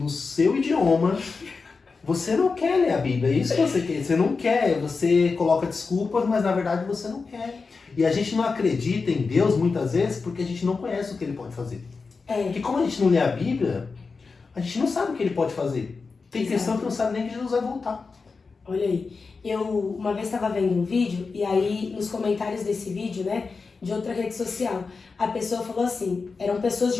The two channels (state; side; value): quieter; right; 4.5 dB